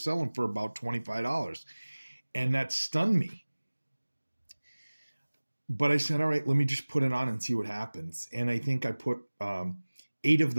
for about $25. And that stunned me. But I said, all right, let me just put it on and see what happens. And I think I put 8 of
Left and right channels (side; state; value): both; inverted; correlation -1.00